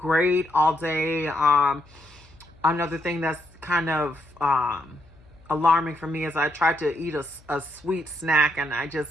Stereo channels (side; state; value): left; noise; hum, 27 dB below the sound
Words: all day. Another thing that's kind of alarming for me is I tried to eat a sweet snack, and I